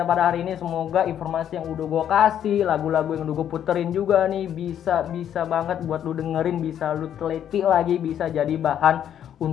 pada hari ini. Semoga informasi yang udah gue kasih, lagu-lagu yang udah gue puterin juga nih bisa banget buat lu dengerin, bisa lu teliti lagi, bisa jadi bahan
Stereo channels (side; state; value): right; quieter; 9.8 dB